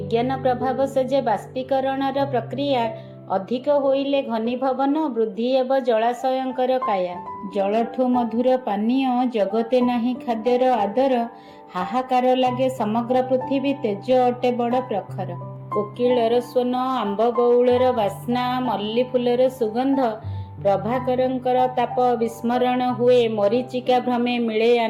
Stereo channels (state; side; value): identical; both; correlation 1.00